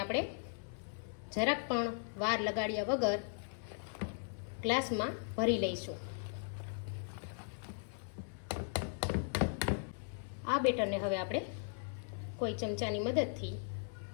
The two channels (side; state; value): right; silent; 52 dB below the other